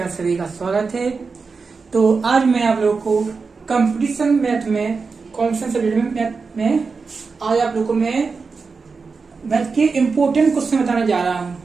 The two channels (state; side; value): quieter; left; 4.7 dB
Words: आप सभी का स्वागत है। तो आज मैं आप लोगों को कंपटीशन मैथ में कॉम्पिटिशन सब्जेक्ट में आज आप लोगों को मैं मैथ के इम्पोर्टेंट क्वेश्चन बताने जा रहा हूँ,